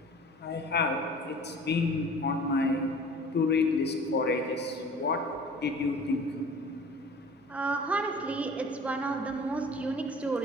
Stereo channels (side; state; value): both; normal; correlation 0.44